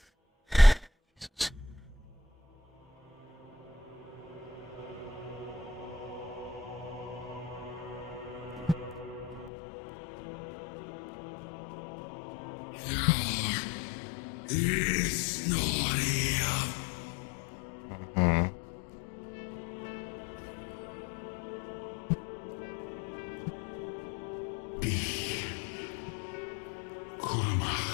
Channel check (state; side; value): drops out; right; at 9.5 s